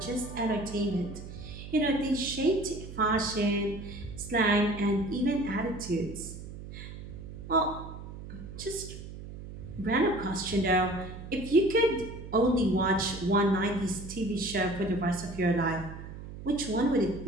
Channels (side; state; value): right; noise; hum, 12 dB below the sound